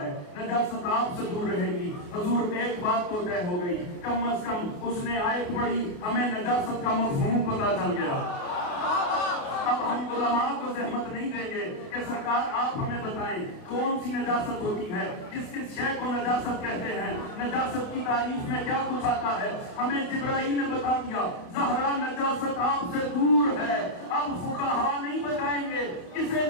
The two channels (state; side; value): late; right; 29 ms